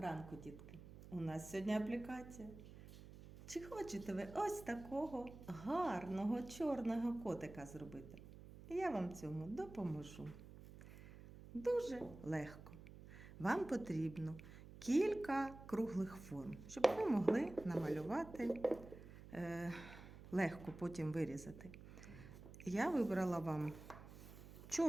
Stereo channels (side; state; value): right; noise; hum, 15 dB below the sound